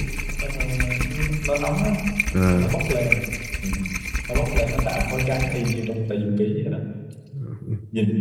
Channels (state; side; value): identical; both; correlation 1.00